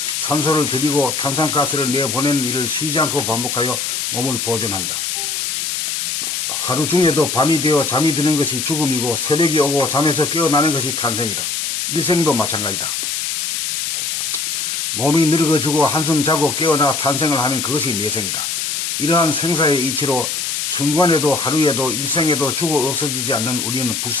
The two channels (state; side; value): noise; left; hiss, 1 dB below the sound